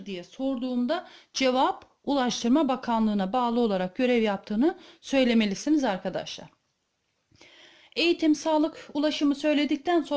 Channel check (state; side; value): identical; both; correlation 1.00